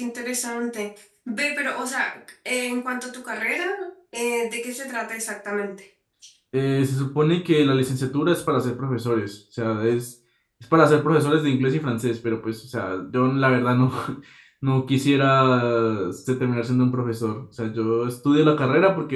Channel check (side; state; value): both; identical; correlation 1.00